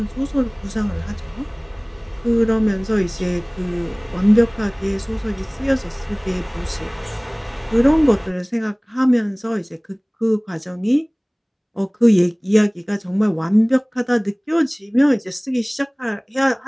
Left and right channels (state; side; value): identical; both; correlation 1.00